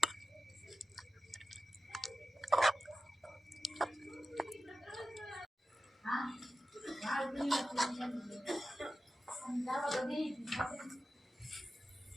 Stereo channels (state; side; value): normal; both; correlation 0.93